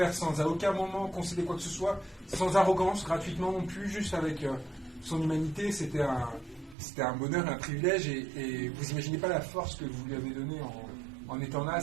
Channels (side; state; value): left; drops out; at 6.8 s